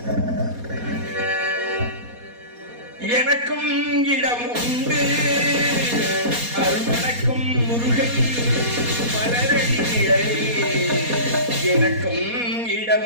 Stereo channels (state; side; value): late; left; 4.2 ms